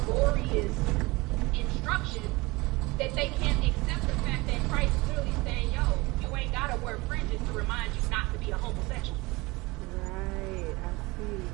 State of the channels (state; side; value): quieter; left; 23.2 dB